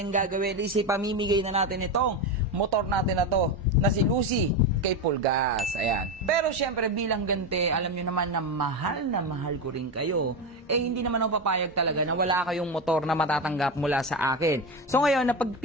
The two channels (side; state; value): both; normal; correlation 0.16